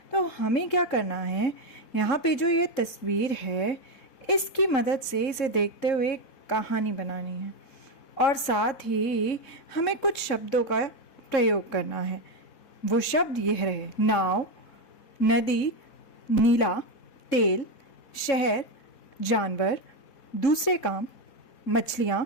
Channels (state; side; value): late; right; 4.1 ms